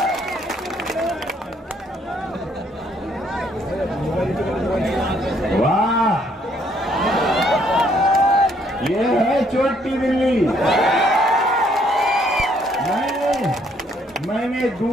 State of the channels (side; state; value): both; normal; correlation 0.67